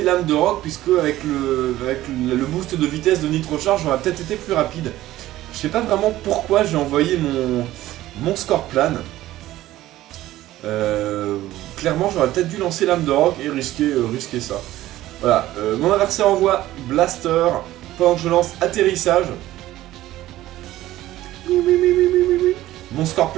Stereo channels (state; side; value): quieter; left; 15.2 dB